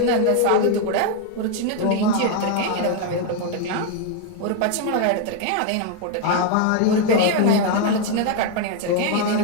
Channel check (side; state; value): both; different; correlation 0.01